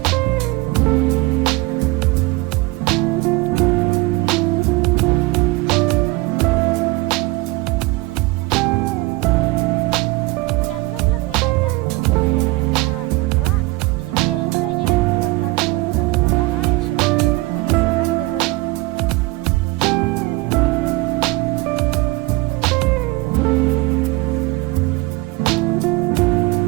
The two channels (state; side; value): quieter; left; 22.3 dB